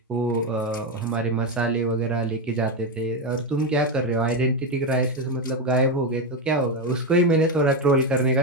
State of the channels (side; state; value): both; normal; correlation 0.10